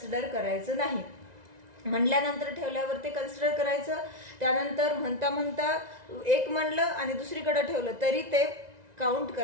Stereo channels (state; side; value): late; left; 1.9 ms